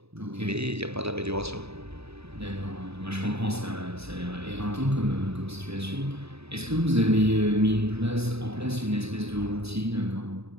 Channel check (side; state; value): left; late; 0.79 ms